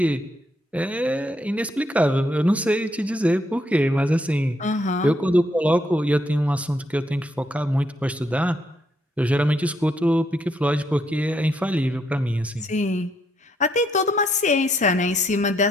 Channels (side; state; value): both; normal; correlation 0.75